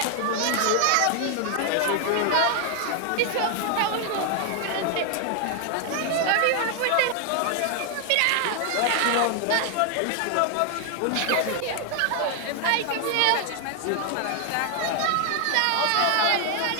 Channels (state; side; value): different; both; correlation 0.00